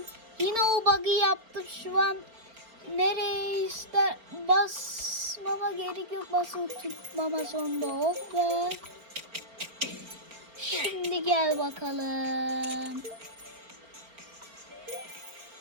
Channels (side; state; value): left; late; 4.4 ms